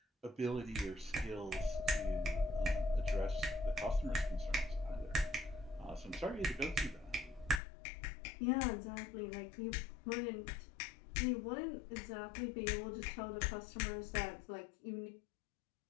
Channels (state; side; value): drops out; right; at 7.6 s